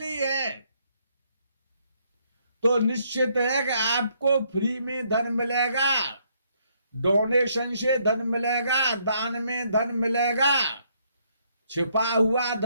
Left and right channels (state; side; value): inverted; both; correlation -0.71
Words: है, तो निश्चित है कि आपको फ्री में धन मिलेगा, डोनेशन से धन मिलेगा, दान में धन मिलेगा, छिपा हुआ